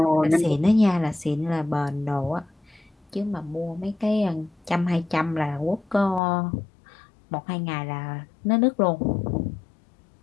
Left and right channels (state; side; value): drops out; right; at 6.2 s